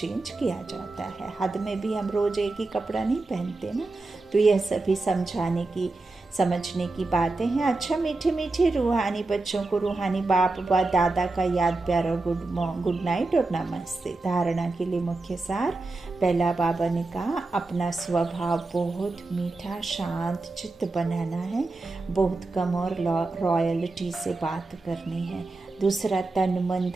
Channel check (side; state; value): left; quieter; 3.3 dB